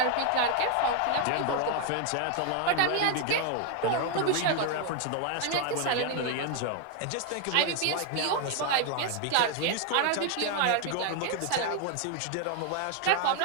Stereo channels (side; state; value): both; different; correlation 0.01